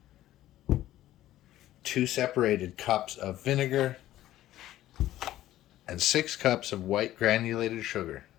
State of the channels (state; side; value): quieter; right; 14.1 dB